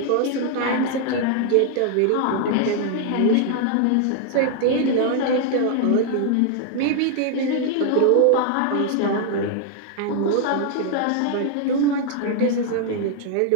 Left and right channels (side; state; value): both; different; correlation 0.00